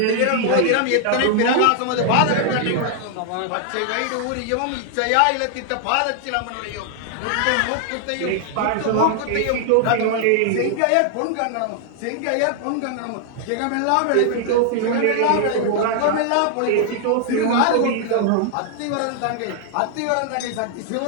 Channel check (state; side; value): different; both; correlation 0.00